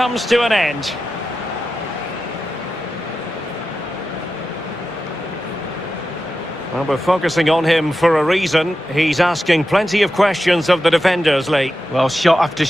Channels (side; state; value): both; normal; correlation 0.91